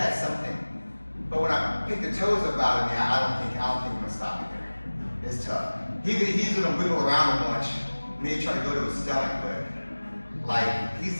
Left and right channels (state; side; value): inverted; both; correlation -1.00